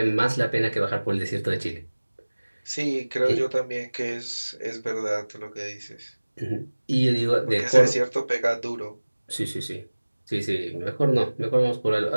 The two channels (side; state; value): both; inverted; correlation -1.00